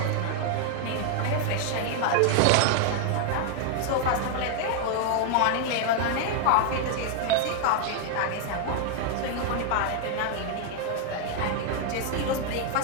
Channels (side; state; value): both; different; correlation 0.00